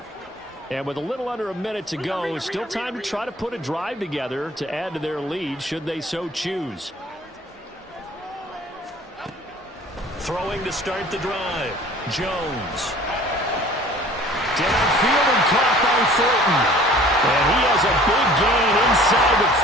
And with a little under a minute to go, still time to try to put a drive together to add to their lead should they so choose. Throwing to start the drive. Jones. Downfield and caught by Thornton. And he has a big gain inside the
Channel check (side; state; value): both; normal; correlation 0.49